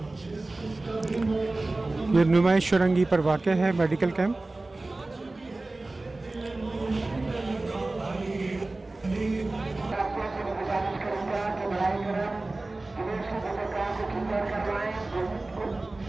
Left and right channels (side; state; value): left; quieter; 3.0 dB